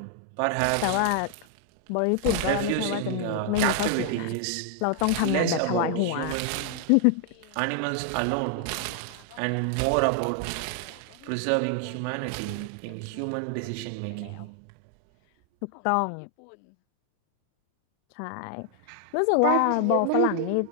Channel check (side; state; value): both; different; correlation 0.00